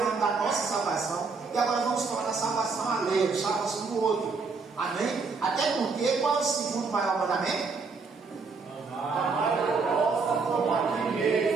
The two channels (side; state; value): left; quieter; 4.6 dB